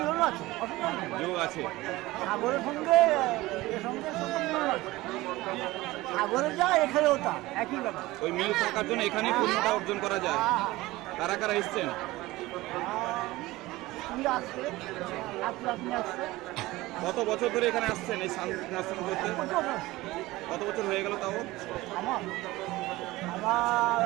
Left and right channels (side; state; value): left; quieter; 19.0 dB